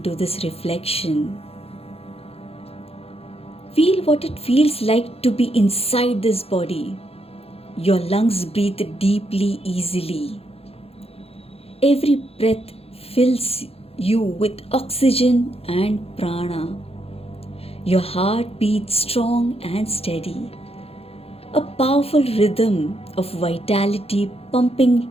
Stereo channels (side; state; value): right; late; 0.29 ms